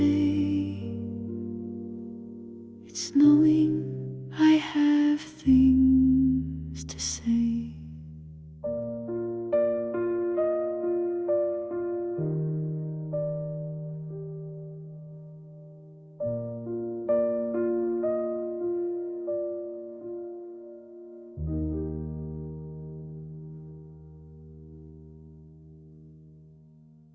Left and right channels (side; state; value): both; identical; correlation 1.00